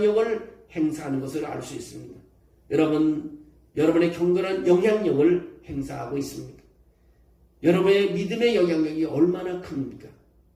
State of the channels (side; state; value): both; identical; correlation 1.00